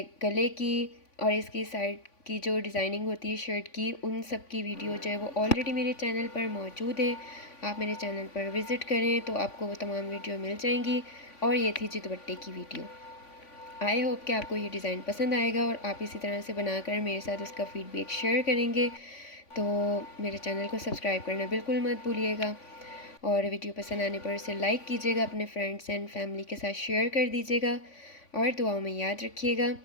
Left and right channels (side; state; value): right; late; 3.5 ms